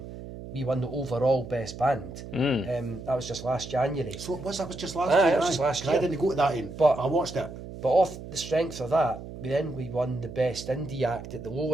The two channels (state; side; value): noise; right; hum, 12 dB below the sound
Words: we won the overall best band. That was just last January. So that was just last year? That was just last year. I didn't go to that end, but I watched it. But off the strength of that, we won the best indie act at the